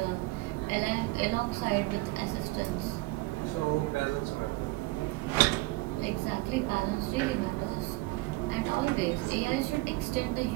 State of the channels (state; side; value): quieter; left; 21.7 dB